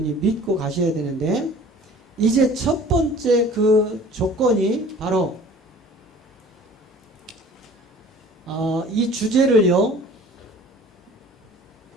믿고 가셔야 되는데, 이제 첫 번째 그 조건이 바로 이 주제를요,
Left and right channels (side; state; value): both; normal; correlation 0.47